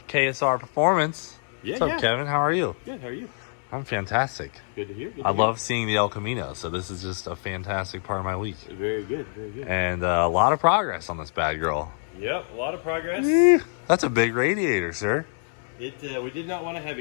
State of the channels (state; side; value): silent; right; 61 dB below the other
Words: KSR Performance. Yeah, What's up, Kevin? How are you? Good, how are you? I'm fantastic. Good to hear. I love seeing the El Camino, so this is just a fantastic part of my week. Very good, very good. And a lot of progress on this bad girl. Yep, a lot of progress. That's a big radiator, sir. We did not want to have